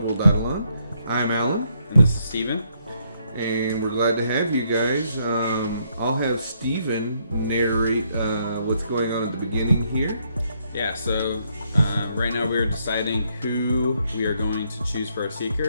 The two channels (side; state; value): both; inverted; correlation -0.73